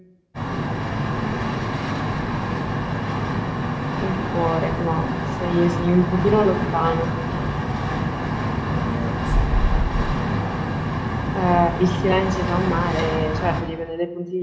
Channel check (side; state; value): both; identical; correlation 1.00